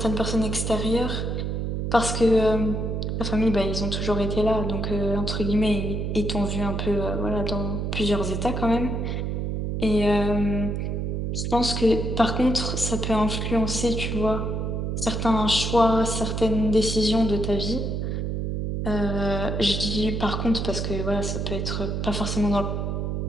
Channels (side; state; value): right; noise; hum, 1 dB below the sound